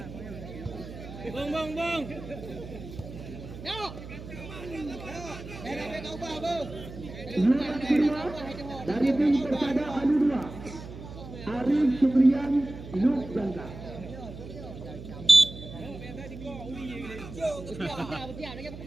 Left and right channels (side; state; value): right; noise; hum, 12 dB below the sound